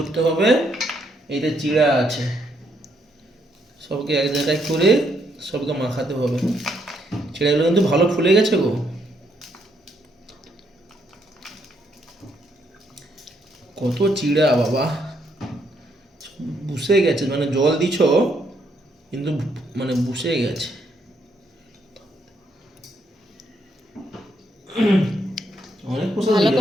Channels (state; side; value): normal; both; correlation 0.74